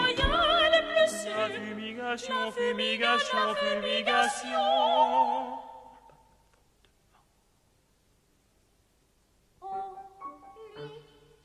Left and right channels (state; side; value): identical; both; correlation 1.00